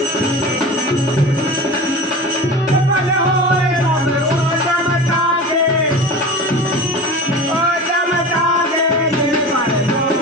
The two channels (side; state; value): both; normal; correlation 0.33